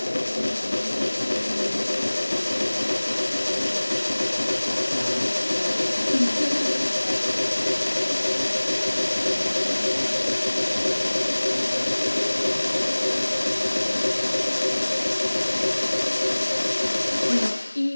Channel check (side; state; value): both; inverted; correlation -1.00